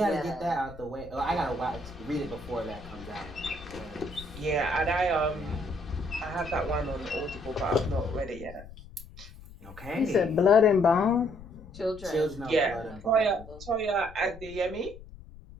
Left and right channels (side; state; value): left; noise; rumble, 17 dB below the sound